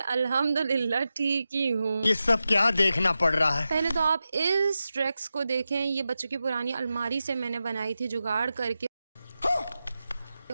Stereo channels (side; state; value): both; inverted; correlation -0.91